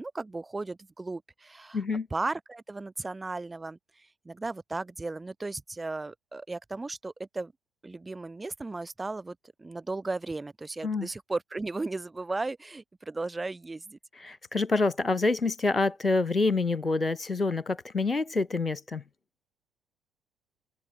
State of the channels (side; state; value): both; normal; correlation 0.84